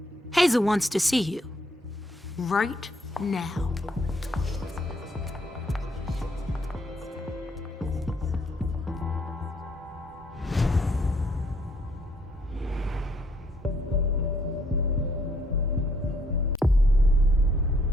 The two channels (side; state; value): both; normal; correlation 0.68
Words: Hazel wants to see you. Right now.